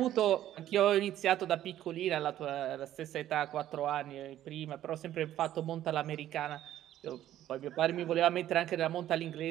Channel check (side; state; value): left; quieter; 12.4 dB